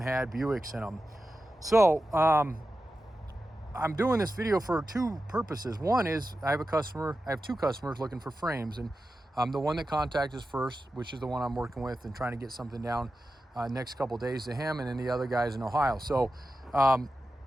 had Buicks in them. So I'm doing this video for 2 purposes. One is I have 2 customers looking for frames, and the one that contacted us first, which is the one I'm working with and trying to get something down next couple days to him, and then the other guy's in Ohio. So the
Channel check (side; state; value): both; normal; correlation 0.92